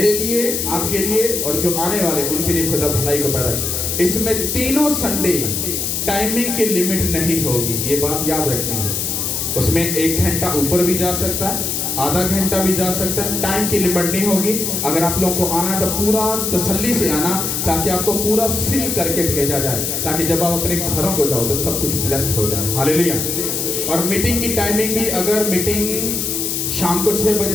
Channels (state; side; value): noise; left; hiss, 1 dB below the sound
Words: लिए, आपके लिए और जो आने वाले उनके लिए खुदा भलाई को पैदा करे। इसमें तीनों संडे टाइमिंग की लिमिट नहीं होगी, ये बात याद रखनी है। उसमें 1 घंटा ऊपर भी जा सकता है, आधा घंटा भी जा सकता है, टाइम की लिमिट नहीं होगी। अगर आप लोगों को आना है तो पूरा तसल्ली से आना, ताकि आपको पूरा फिल करके भेजा जाए, ताकि जब आप अपने घरों को जाओ तो सब कुछ ब्लेस्ड हो जाए। हालेलुया। और मीटिंग की टाइमिंग भी, अगर मीटिंग शाम को 6 बजे